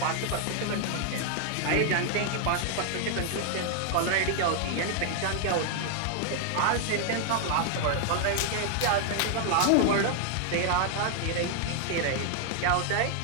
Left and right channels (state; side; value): different; both; correlation 0.00